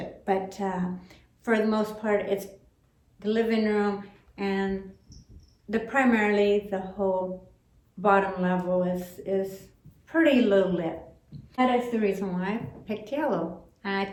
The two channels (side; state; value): both; identical; correlation 1.00